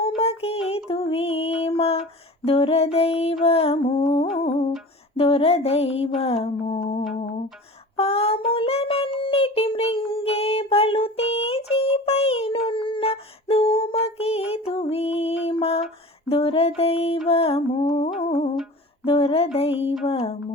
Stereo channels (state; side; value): normal; both; correlation 0.38